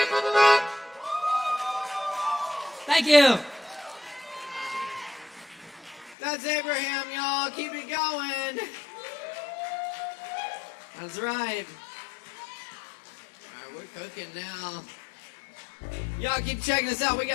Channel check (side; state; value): right; drops out; at 6.2 s